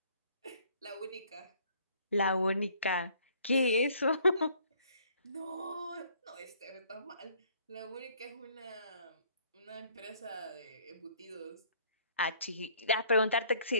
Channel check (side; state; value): both; inverted; correlation -0.60